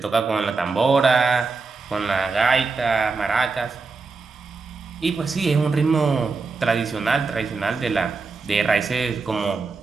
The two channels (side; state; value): left; quieter; 4.2 dB